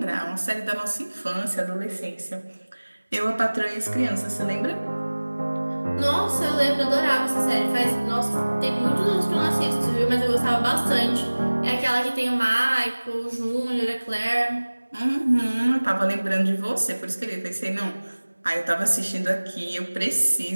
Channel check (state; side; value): inverted; both; correlation -1.00